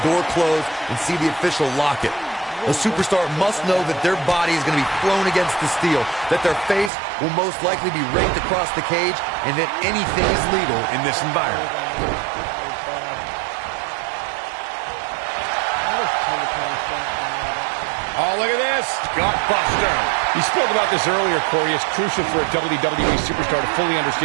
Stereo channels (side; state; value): left; drops out; at 6.9 s